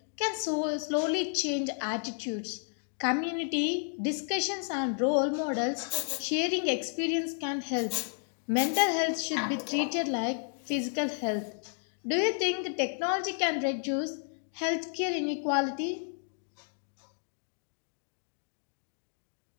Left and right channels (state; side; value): silent; right; 56 dB below the other